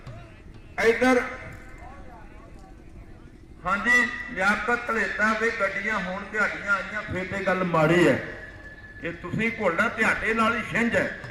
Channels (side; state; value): both; identical; correlation 1.00